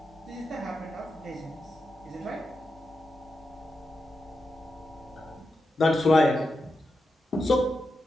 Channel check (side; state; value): both; normal; correlation 0.87